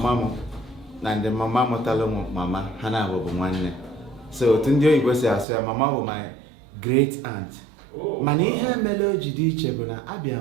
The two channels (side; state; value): left; drops out; at 5.5 s